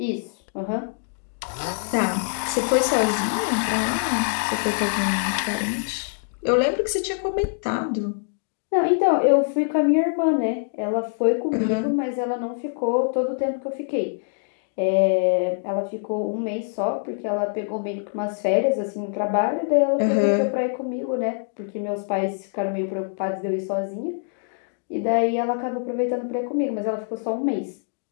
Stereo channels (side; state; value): right; silent; digital silence